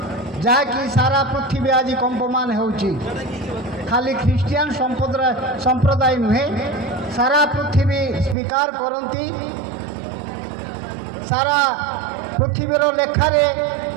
ଯାହାକି ସାରା ପୃଥିବୀ ଆଜି କମ୍ପମାନ ହେଉଛି। ଖାଲି ଖ୍ରୀଷ୍ଟିଆନ ସମ୍ପ୍ରଦାୟ ନୁହେଁ, ସାରା ପୃଥିବୀ ସ୍ୱୀକାର କରନ୍ତି। ସାରା ପୃଥିବୀର ଲେଖାରେ,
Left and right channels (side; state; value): left; drops out; at 8.3 s